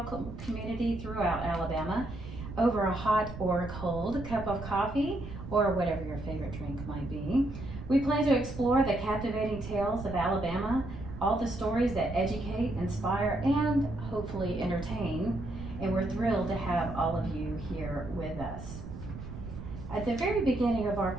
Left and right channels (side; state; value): right; noise; rumble, 10 dB below the sound